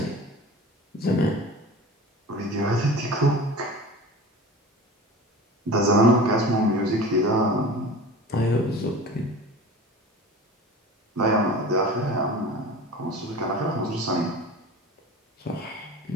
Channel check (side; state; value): both; normal; correlation 0.37